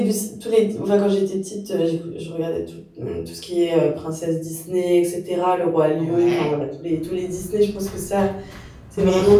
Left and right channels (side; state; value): both; identical; correlation 1.00